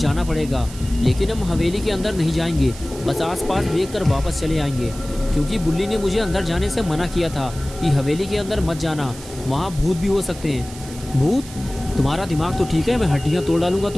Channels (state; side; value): noise; right; hiss, 16 dB below the sound